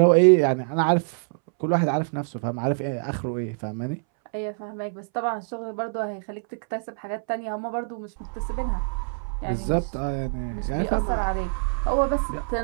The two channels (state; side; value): silent; left; 61 dB below the other